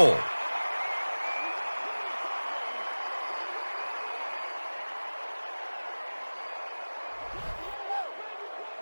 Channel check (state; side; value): inverted; both; correlation -1.00